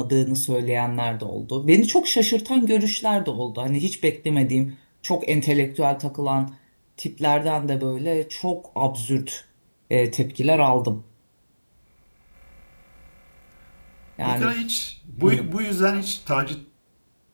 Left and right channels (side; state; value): both; inverted; correlation -1.00